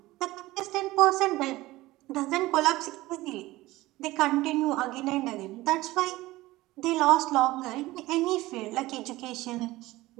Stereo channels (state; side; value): quieter; left; 18.4 dB